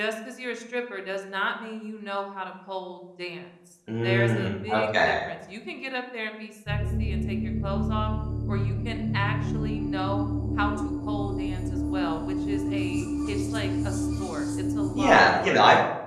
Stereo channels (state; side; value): identical; both; correlation 1.00